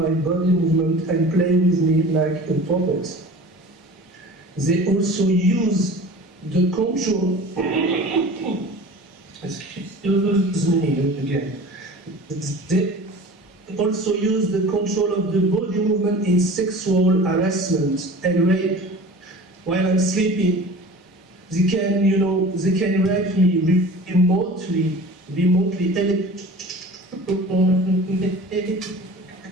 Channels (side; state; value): both; normal; correlation 0.40